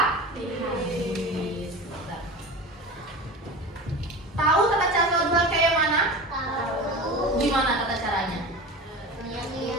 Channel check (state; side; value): normal; both; correlation 0.32